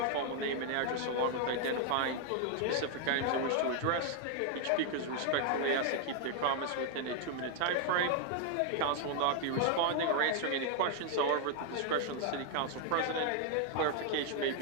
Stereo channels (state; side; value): different; both; correlation 0.00